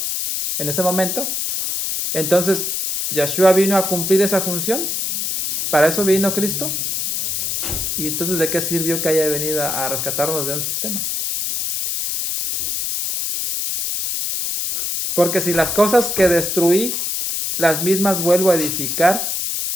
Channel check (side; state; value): left; noise; hiss, 1 dB below the sound